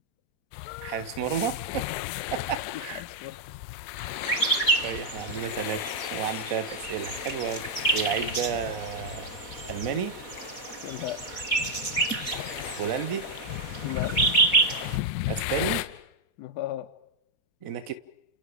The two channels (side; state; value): right; late; 4.1 ms